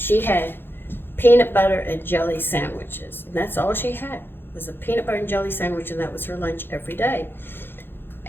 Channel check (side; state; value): right; late; 0.10 ms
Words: had peanut butter and jelly sandwiches, and that's all she had was a peanut butter and jelly sandwich, and that was her lunch every day.